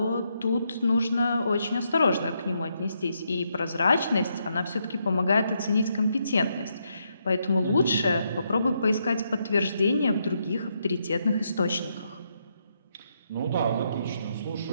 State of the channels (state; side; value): inverted; both; correlation -0.79